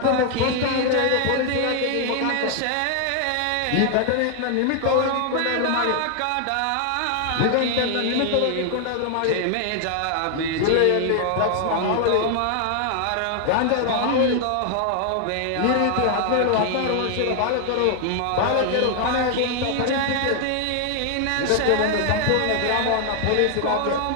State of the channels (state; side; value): different; both; correlation 0.00